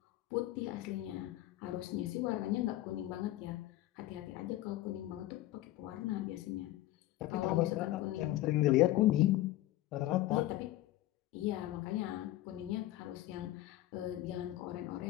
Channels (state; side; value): quieter; right; 15.7 dB